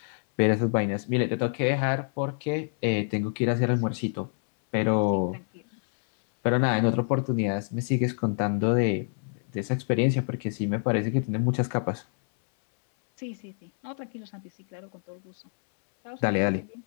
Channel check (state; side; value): silent; right; 60 dB below the other